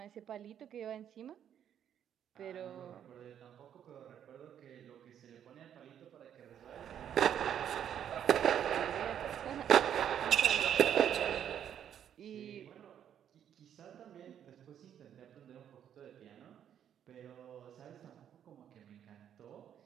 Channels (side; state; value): left; quieter; 9.5 dB